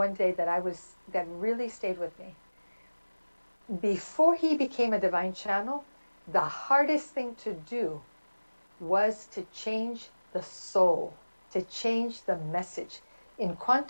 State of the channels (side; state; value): both; inverted; correlation -1.00